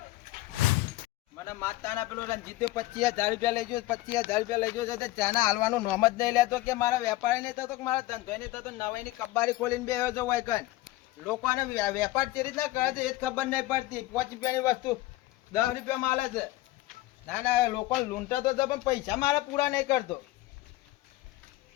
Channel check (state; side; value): quieter; right; 17.8 dB